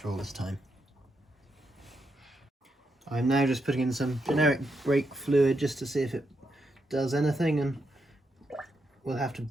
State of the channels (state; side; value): normal; both; correlation 0.82